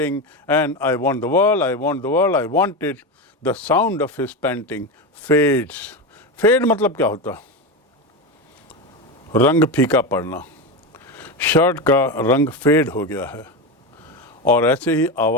and I want the world, I want the world, I want it. The sound of his panting fades. Fade मतलब क्या होता? रंग फीका पड़ना. Shirt का रंग fade हो गया है और ऐसे ही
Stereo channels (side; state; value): both; normal; correlation 0.17